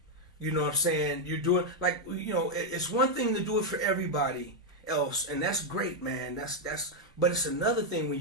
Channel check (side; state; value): both; normal; correlation 0.00